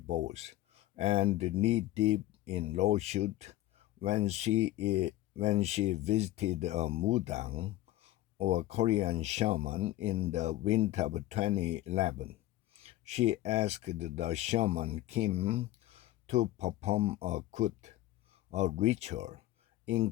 and knee-deep in lawsuit when she visited a mudang, or Korean shaman, in the winter of 2011. She asked the shaman Kim to perform a kut, a ritual,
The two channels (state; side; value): quieter; right; 15.4 dB